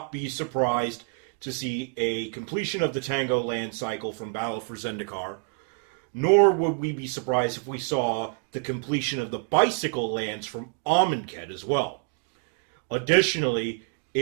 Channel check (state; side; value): quieter; left; 37.5 dB